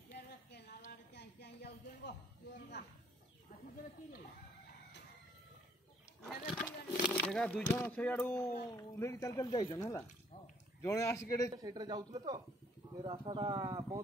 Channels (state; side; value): normal; both; correlation 0.65